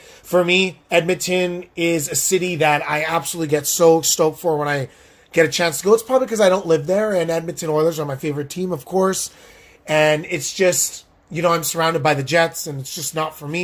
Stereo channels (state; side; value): identical; both; correlation 1.00